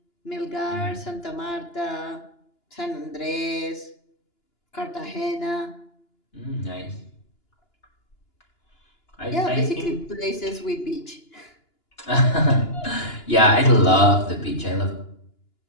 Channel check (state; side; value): late; right; 2.9 ms